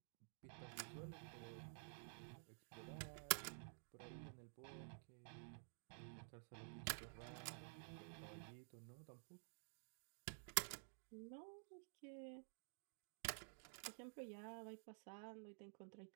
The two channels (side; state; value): left; silent; digital silence